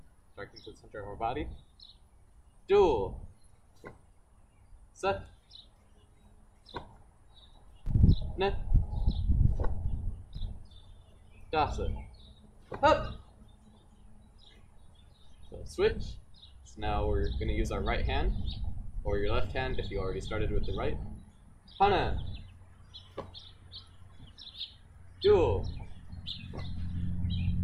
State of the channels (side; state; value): both; identical; correlation 1.00